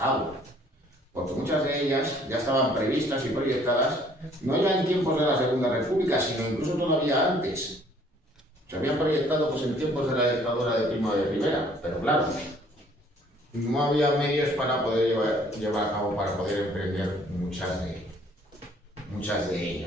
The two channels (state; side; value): normal; both; correlation 0.59